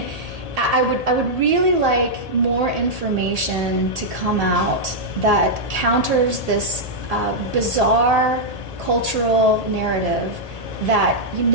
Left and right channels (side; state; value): left; late; 1.8 ms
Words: I would really like more information to come out that counters this bizarre cultural narrative that you